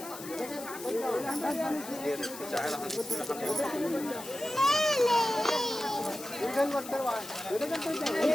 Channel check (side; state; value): left; noise; hiss, 13 dB below the sound